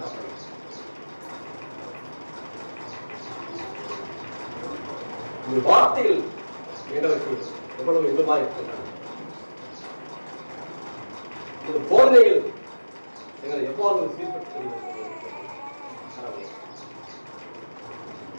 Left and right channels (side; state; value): both; inverted; correlation -1.00